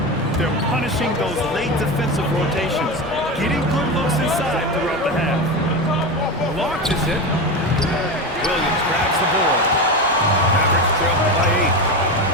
They're punishing those late defensive rotations, getting good looks inside throughout the half. Launches it. Williams grabs the board. Mavericks trail by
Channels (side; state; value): both; normal; correlation 0.20